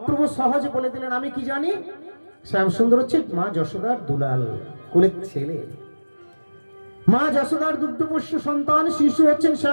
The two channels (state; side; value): inverted; both; correlation -1.00